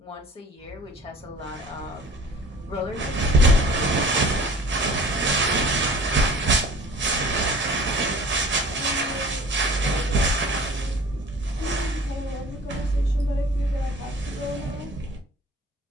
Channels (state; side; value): normal; both; correlation 0.45